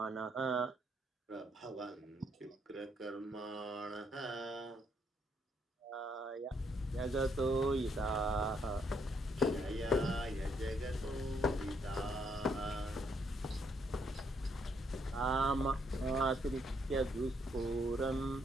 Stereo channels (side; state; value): both; normal; correlation 0.73